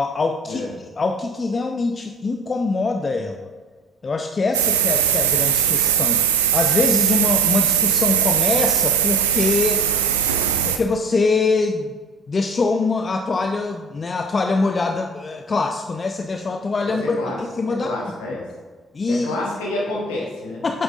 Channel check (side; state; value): both; normal; correlation 0.37